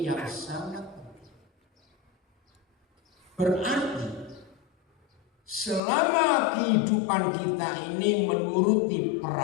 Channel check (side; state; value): right; drops out; at 5.8 s